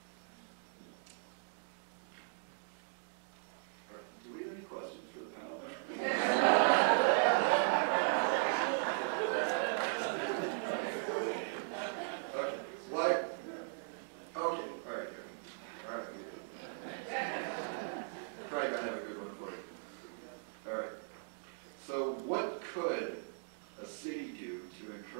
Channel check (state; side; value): silent; left; digital silence